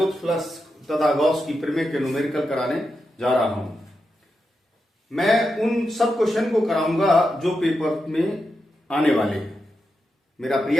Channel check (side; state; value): both; normal; correlation 0.87